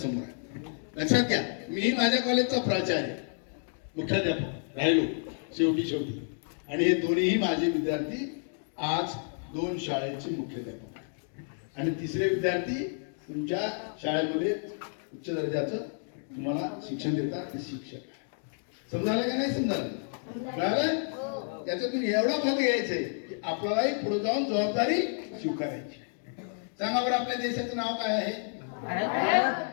आहे. लक्षात घ्या. मी माझ्या कॉलेजचा प्राचार्य, मुख्याध्यापक राहिलो शेवटी, आणि हे दोन्हीही माझे विद्यार्थी आज 2 शाळेचे मुख्याध्यापक आणि तिसरे विद्यार्थी तुमच्या शाळेमध्ये उच्च दर्जाचं तुम्हाला शिक्षण देतात, ते शिक्षक. समजायला का नाही समजायला? कळालं? त्याच्यातून एवढा भाग घ्यायचंय की आपल्यालाही पुढे जाऊन जबाबदारी स्वीकारायची. सांगा बरं, आपल्या देशाचं नाव काय आहे?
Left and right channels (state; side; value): silent; right; 58 dB below the other